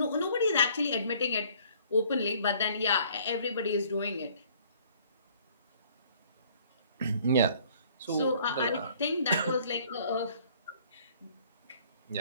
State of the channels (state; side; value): inverted; both; correlation -0.58